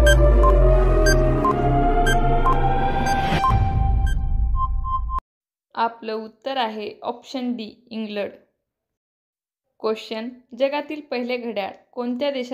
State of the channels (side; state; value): both; identical; correlation 1.00